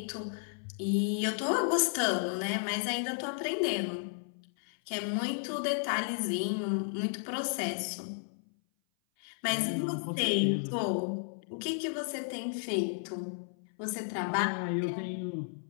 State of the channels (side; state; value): right; silent; 56 dB below the other